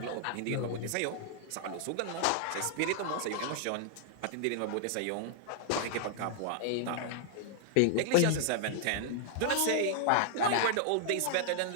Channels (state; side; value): different; both; correlation -0.01